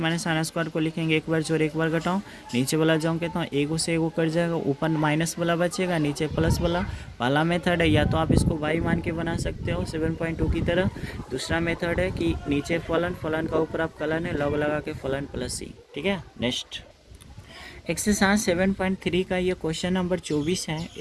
sine square को लिखेंगे एक बार जोड़ एक बार घटाओ, नीचे वाला जाऊँ कहता हूँ एगो से एगो कट जाएगा, ऊपर माइनस वाला बचेगा नीचे प्लस वाला। पहला मेथड है, या तो आप इसको y मान के बना सकते हो 7.2 की तरह। दूसरा मेथड है कि नीचे फलन, फलन का ऊपर आप कलन है, लॉग लगा के फलन प्लस सी। ठीक है, नेक्स्ट एक्सरसाइज 7.3 का ये क्वेश्चन नंबर 24 है,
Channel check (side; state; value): both; identical; correlation 1.00